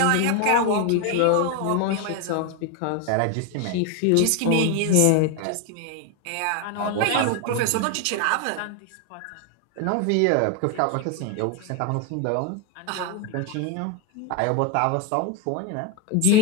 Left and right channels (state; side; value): different; both; correlation 0.01